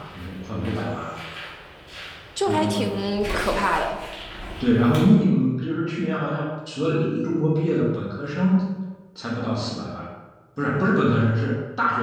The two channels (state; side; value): identical; both; correlation 1.00